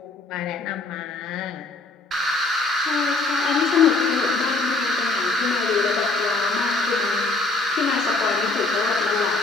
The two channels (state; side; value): quieter; right; 3.2 dB